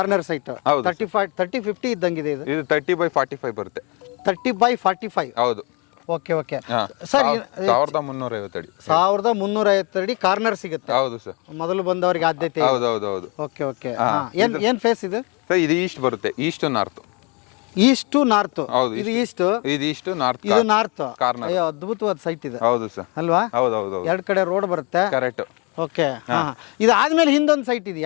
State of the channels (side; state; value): right; quieter; 30.9 dB